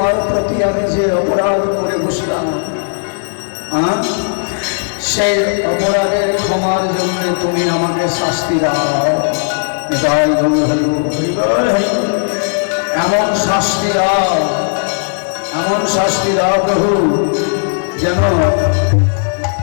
প্রতি আমি যে অপরাধ করে বসলাম, সেই অপরাধের ক্ষমার জন্য তুমি আমাকে শাস্তি দাও। জয় গুরু, এমন শাস্তি দাও, এমন শাস্তি দাও প্রভু, যেন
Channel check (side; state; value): right; silent; digital silence